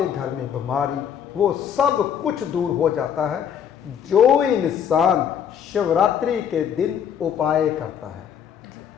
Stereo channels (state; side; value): quieter; right; 8.5 dB